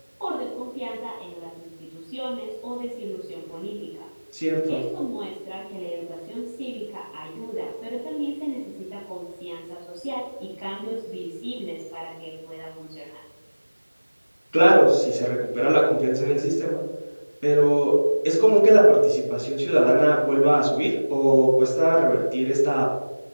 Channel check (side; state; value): both; inverted; correlation -1.00